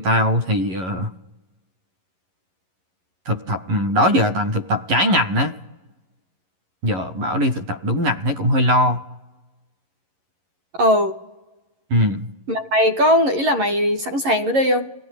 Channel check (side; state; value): left; late; 11 ms